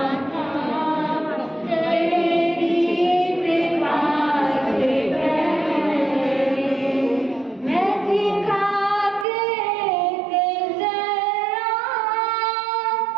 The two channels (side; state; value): left; drops out; at 9.2 s